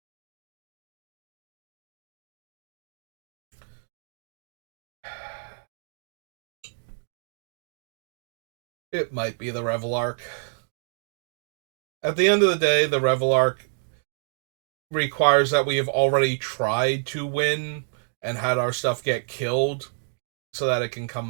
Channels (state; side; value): silent; left; digital silence